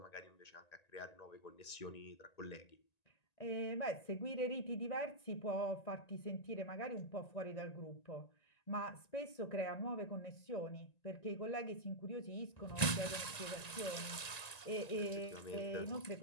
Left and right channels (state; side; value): late; right; 1.9 ms